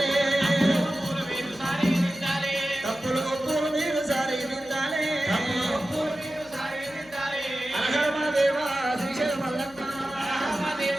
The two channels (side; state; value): left; noise; hum, 23 dB below the sound